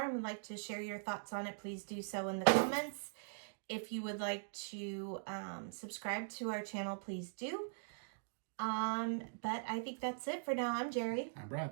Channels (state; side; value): silent; left; digital silence